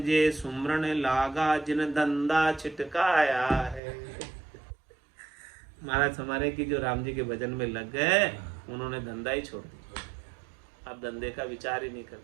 जे सुमरण लागा, जिन धंधा छिटकाया है। महाराज हमारे की जो राम जी के भजन में लग गए, उन्होंने धंधा ही छोड़ दिया। अब धंधे का विचार ही नहीं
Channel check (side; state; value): left; drops out; at 3.8 s